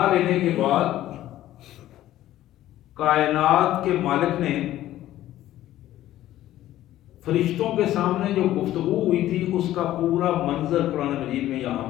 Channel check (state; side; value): quieter; right; 13.9 dB